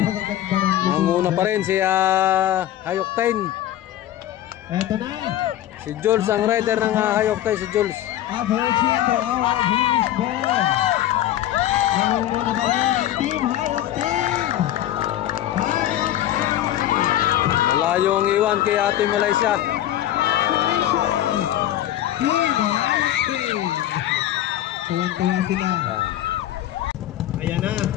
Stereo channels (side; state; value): right; quieter; 12.8 dB